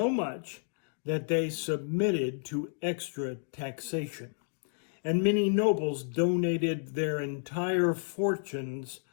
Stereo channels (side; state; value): right; silent; digital silence